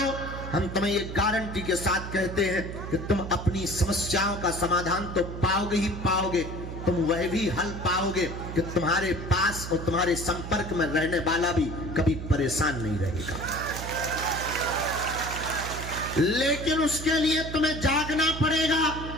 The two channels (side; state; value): right; noise; hum, 8 dB below the sound